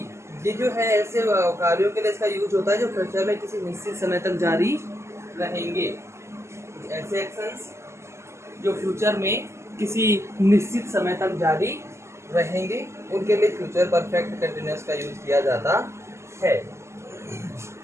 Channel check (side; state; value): left; late; 0.13 ms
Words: ये जो है ऐसे कार्यों के लिए इसका यूज होता है जो फ्यूचर में किसी निश्चित समय तक जारी रहेंगे। ऐसे एक्शंस जो फ्यूचर में किसी निश्चित समय तक जारी रहेंगे उनके लिए फ्यूचर परफेक्ट कंटिन्यूअस का यूज किया जाता है।